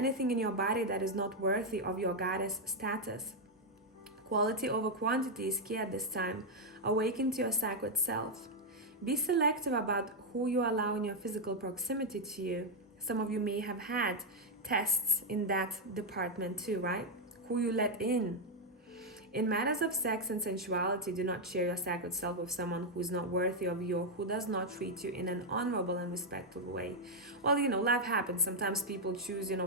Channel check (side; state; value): both; normal; correlation 0.01